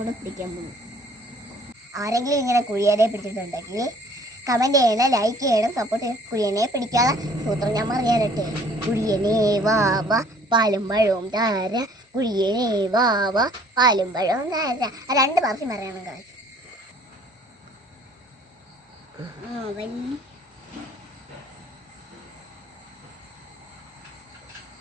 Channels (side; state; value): both; normal; correlation 0.56